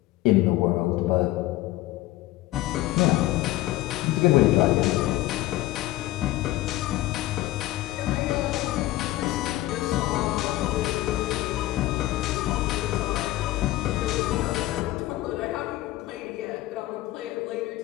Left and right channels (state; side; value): quieter; right; 16.7 dB